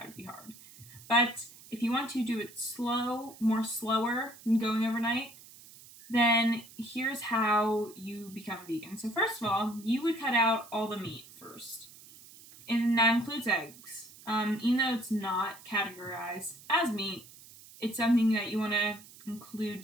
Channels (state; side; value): noise; right; hiss, 20 dB below the sound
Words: would be hard. But if you want to do it slower than going overnight, then here's how you become vegan. So first of all, you would cut out all the meat first. And that includes eggs. Even though it's not categorized as meat, it's something that you want to include